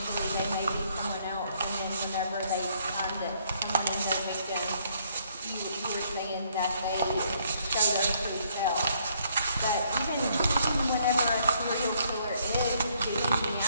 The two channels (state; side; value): inverted; both; correlation -0.68